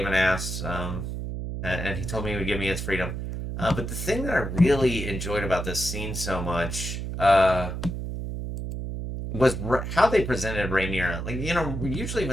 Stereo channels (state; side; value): noise; right; hum, 5 dB below the sound